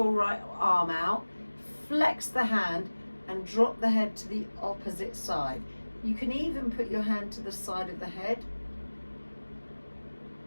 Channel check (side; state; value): both; inverted; correlation -1.00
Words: right arm out, flex the hand and drop the head to the opposite side. You can even put your hand to the side of the head.